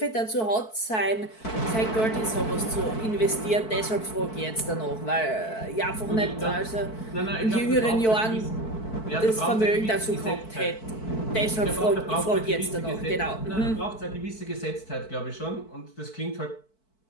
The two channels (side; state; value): right; late; 4.6 ms